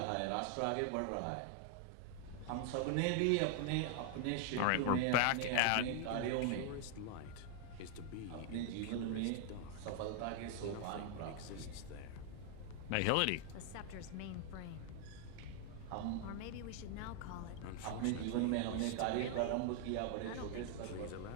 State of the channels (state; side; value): different; both; correlation 0.00